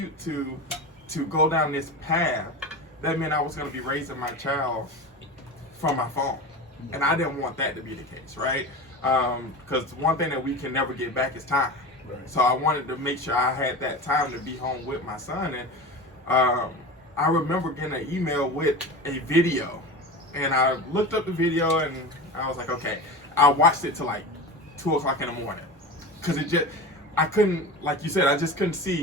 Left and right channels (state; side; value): normal; both; correlation 0.29